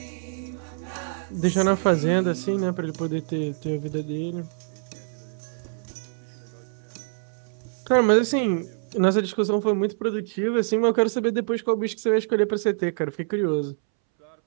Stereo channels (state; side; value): silent; left; 61 dB below the other